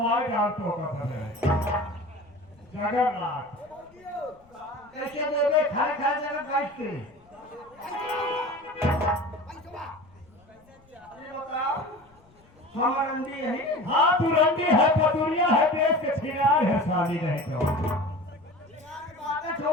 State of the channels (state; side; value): noise; left; rumble, 30 dB below the sound